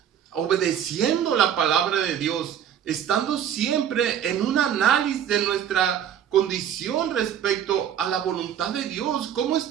obedeciendo la palabra de Dios, estando siempre en un análisis de nuestra condición respecto a la voluntad de Dios. ¿Cómo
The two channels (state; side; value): quieter; left; 9.4 dB